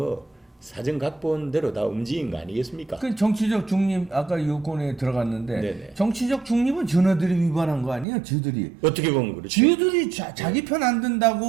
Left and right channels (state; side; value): drops out; left; at 8.1 s